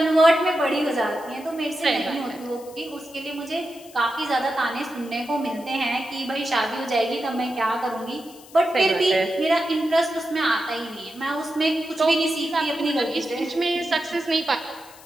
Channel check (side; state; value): left; noise; hiss, 21 dB below the sound